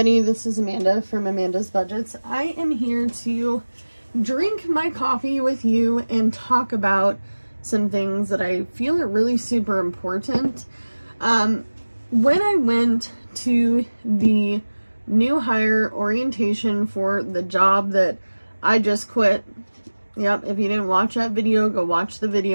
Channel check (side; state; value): both; inverted; correlation -1.00